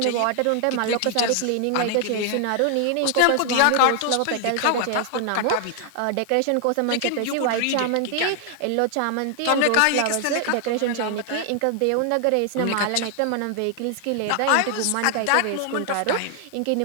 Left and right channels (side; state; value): both; different; correlation 0.00